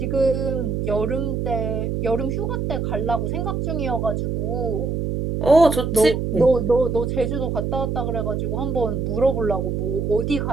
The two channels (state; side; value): noise; right; hum, 1 dB below the sound